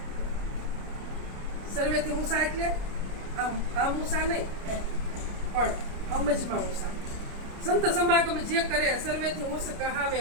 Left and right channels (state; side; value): late; left; 29 ms